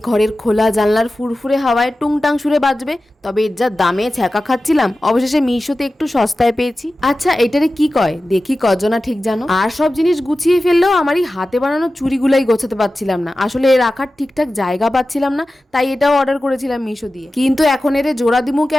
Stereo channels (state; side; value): normal; both; correlation 0.95